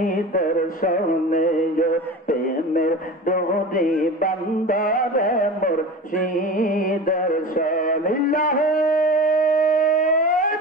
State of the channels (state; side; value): normal; both; correlation 0.32